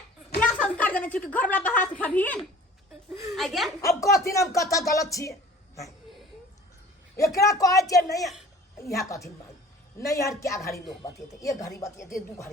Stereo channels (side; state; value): both; normal; correlation 0.47